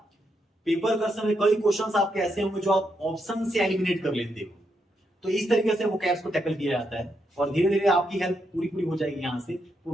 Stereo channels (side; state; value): both; normal; correlation 0.80